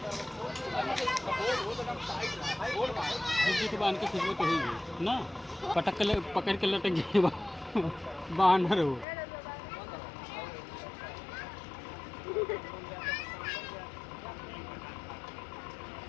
बांध के खिंचवे तो होगी ना, पटक के पकड़ के लटक गए बानर हो।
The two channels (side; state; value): right; drops out; at 9.1 s